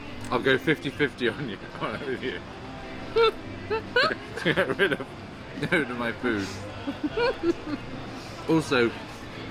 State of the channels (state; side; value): identical; both; correlation 1.00